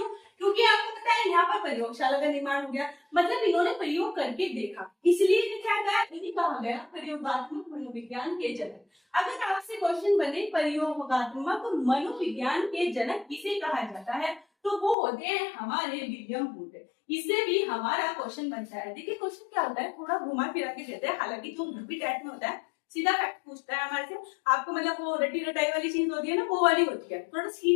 क्योंकि आपको पता है यहाँ पर प्रयोगशाला का निर्माण हो गया, मतलब इन्होंने प्रयोग करके देखा, इसलिए क्या कहा, इन्हें कहा गया प्रयोगात्मक मनोविज्ञान के जनक। अगर आपसे क्वेश्चन बने प्रयोगात्मक मनोविज्ञान के जनक किसे कहा जाता है, तो वो होते हैं हमारे विलियम वुंड। इससे भी हमारा क्वेश्चन बनता है। देखिए क्वेश्चन क्या होता है, थोड़ा घुमा फिरा के देते हैं, हालांकि जो यूपी टाइप में होता है सीधा फैक्ट पूछता है हमारे से, आपको मतलब वो रटी रटाई वाली चीज होती है ना वो वाली होती है। थोड़ा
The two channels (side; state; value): right; drops out; at 15.0 s